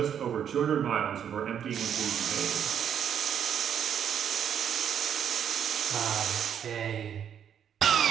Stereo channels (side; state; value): left; quieter; 8.7 dB